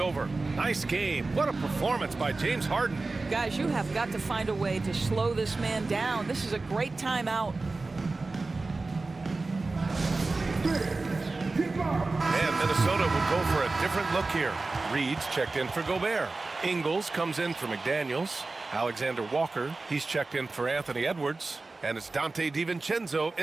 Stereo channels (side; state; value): left; quieter; 3.5 dB